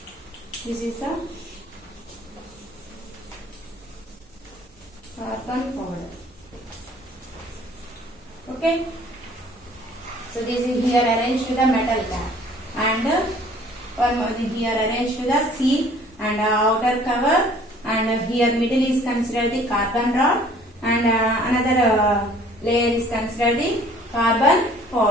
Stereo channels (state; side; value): normal; both; correlation 0.54